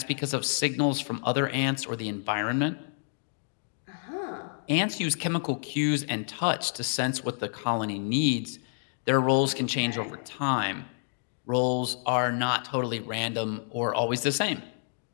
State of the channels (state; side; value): silent; right; digital silence